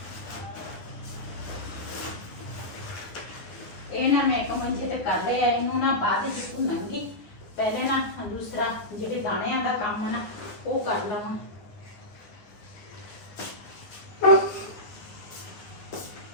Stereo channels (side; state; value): right; late; 9.6 ms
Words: ਇਹ ਨਾ ਮੈਂ ਇੱਕ ਮੰਜੇ ਤੇ ਕਰ ਲਿਆ ਇਹਨੂੰ ਨਾ ਬਾਅਦ ਵਿੱਚ ਭੁੰਨਾਂਗੀ ਪਹਿਲੇ ਨਾ ਦੂਸਰਾ ਜਿਹੜੇ ਦਾਣਿਆਂ ਦਾ ਕੰਮ ਨਾ ਉਹ ਕਰ ਲਵਾਂ।